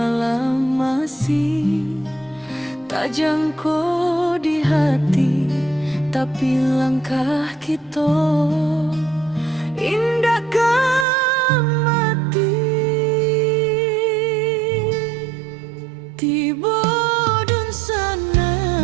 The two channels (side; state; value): left; drops out; at 11.1 s